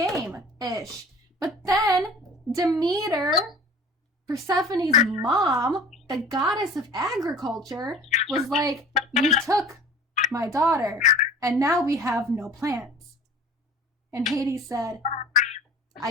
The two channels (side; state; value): both; normal; correlation 0.43